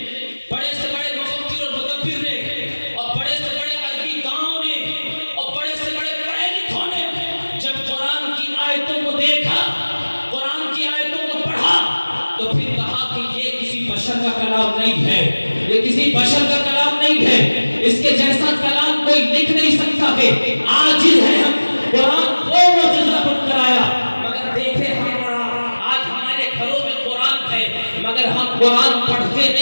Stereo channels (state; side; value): inverted; both; correlation -1.00